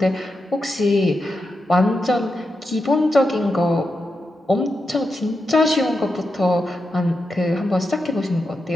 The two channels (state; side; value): normal; both; correlation 0.87